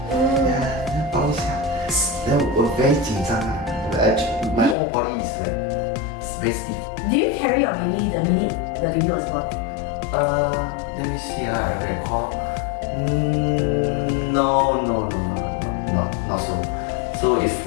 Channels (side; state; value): right; drops out; at 4.8 s